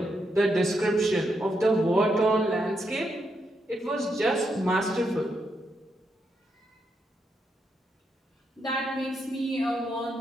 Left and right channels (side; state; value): both; normal; correlation 0.81